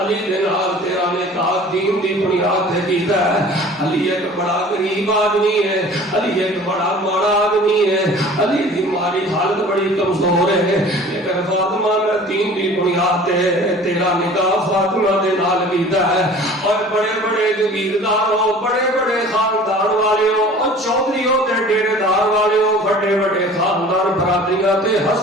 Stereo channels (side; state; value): both; normal; correlation 0.46